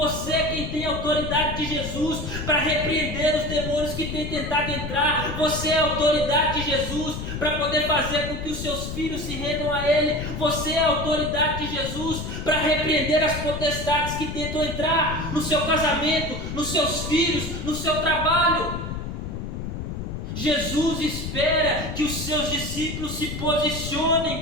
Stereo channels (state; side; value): noise; left; rumble, 6 dB below the sound